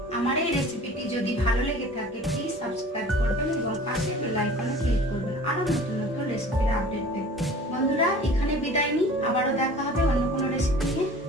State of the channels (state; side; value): normal; both; correlation 0.44